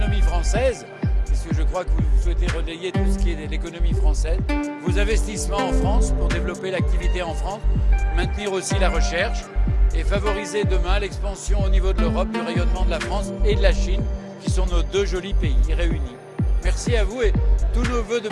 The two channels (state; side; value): identical; both; correlation 1.00